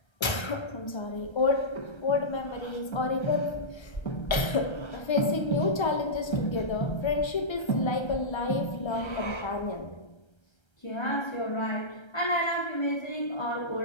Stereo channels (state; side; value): late; right; 1.3 ms